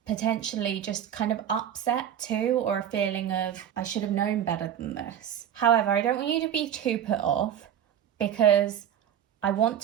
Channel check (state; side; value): quieter; left; 9.8 dB